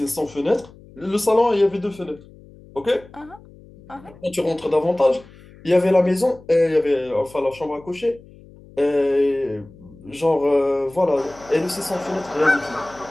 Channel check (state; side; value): noise; left; hum, 22 dB below the sound